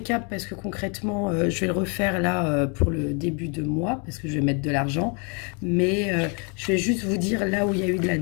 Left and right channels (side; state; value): right; quieter; 35.7 dB